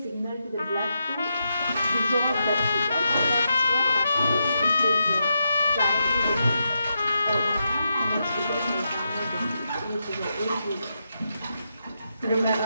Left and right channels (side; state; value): both; inverted; correlation -0.85